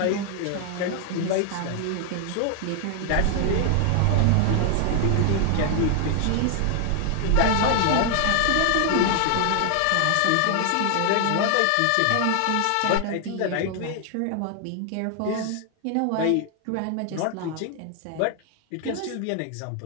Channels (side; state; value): both; different; correlation 0.00